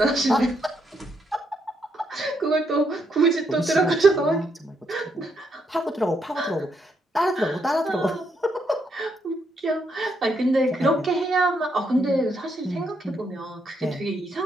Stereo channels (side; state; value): both; normal; correlation 0.77